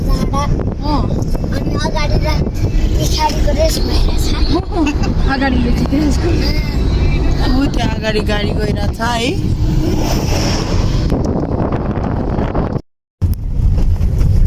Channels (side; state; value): both; identical; correlation 1.00